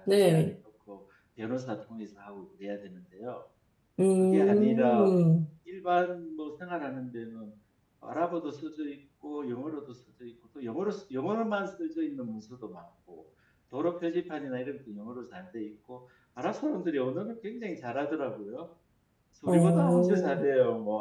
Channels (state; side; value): identical; both; correlation 1.00